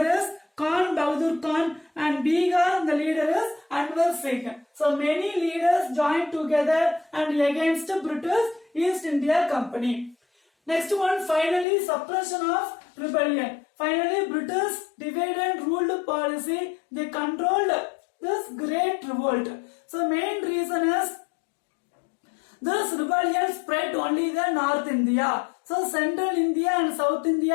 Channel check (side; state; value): right; drops out; at 11.7 s